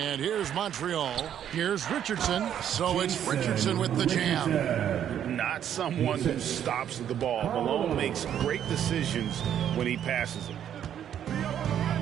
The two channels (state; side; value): quieter; left; 9.8 dB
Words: here's Montreal. Here's Richardson. So it's Richardson with the jam. Not someone who stops the ball. Malone makes great decisions when he passes it.